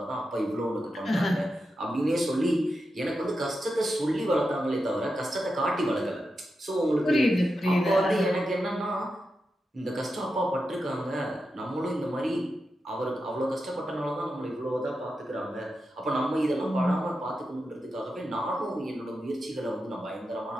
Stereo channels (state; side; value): normal; both; correlation 0.89